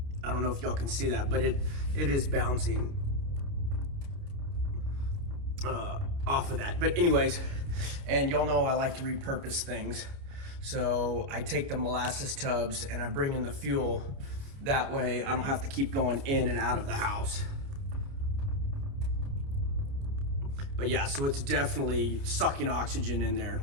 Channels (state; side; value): late; left; 29 ms